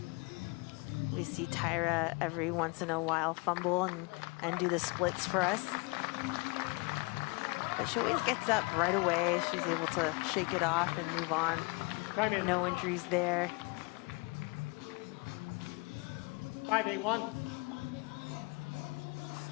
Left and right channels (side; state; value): right; quieter; 27.7 dB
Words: We see Tyra every once in a while fumble and do the splits for us. But she always gets up right away. She's able to shake it off and move on. No injuries there. 5-8-1.